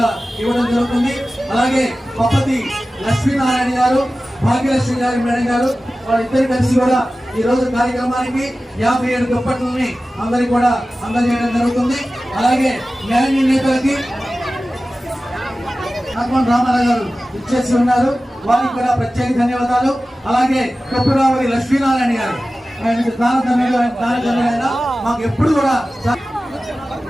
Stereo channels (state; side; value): normal; both; correlation 0.95